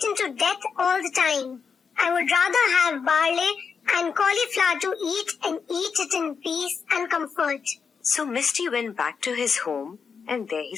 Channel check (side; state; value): right; quieter; 5.9 dB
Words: to death all the time. I would rather have barley and cauliflower to eat and eat it in peace and comfort. So Misty went back to his home, and there he